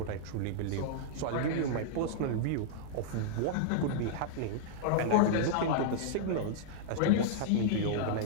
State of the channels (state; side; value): different; both; correlation -0.02